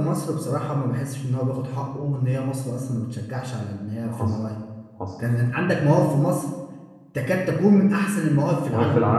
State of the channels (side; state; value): both; identical; correlation 1.00